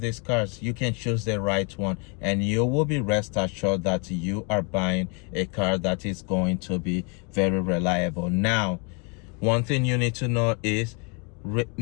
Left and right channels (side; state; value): right; quieter; 33.6 dB